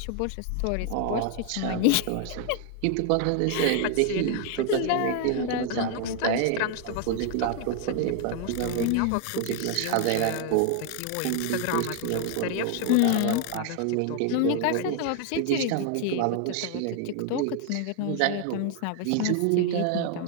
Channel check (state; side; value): different; both; correlation 0.00